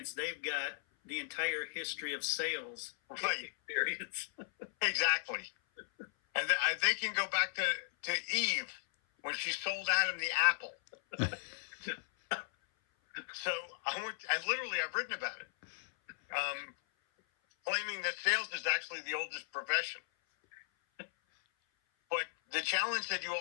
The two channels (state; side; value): silent; right; 53 dB below the other